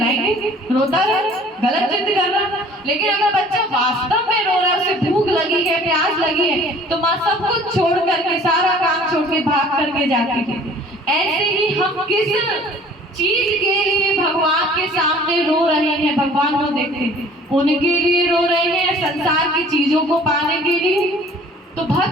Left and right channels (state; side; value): normal; both; correlation 0.51